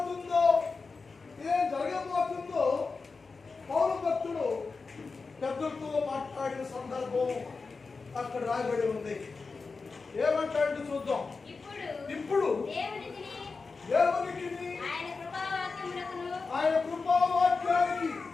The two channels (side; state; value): right; quieter; 4.4 dB